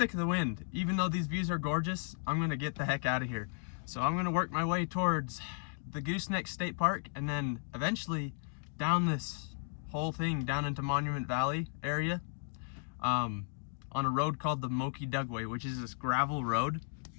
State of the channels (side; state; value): right; silent; 55 dB below the other